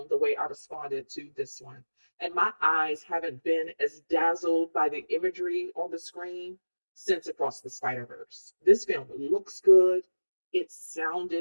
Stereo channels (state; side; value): inverted; both; correlation -1.00